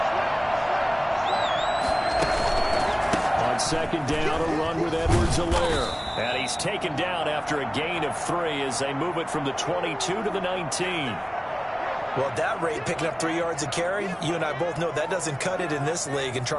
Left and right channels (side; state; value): both; identical; correlation 1.00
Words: On 2nd down, a run with Edwards-Helaire. And he's taken down after a gain of 3 as they move it from the 22 to the 19. Well, at that rate, picking up 3 yards a carry, you and I both know that doesn't cut it in this league and